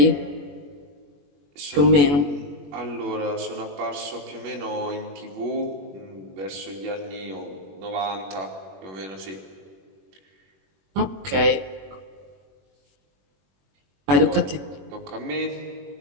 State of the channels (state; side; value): late; left; 21 ms